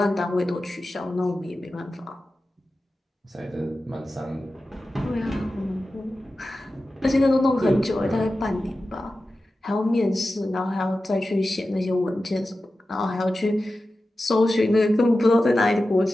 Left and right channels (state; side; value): normal; both; correlation 0.93